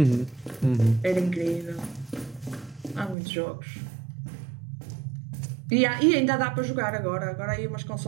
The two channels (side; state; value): left; drops out; at 3.2 s